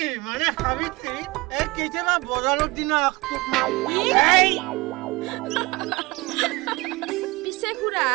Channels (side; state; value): left; quieter; 23.4 dB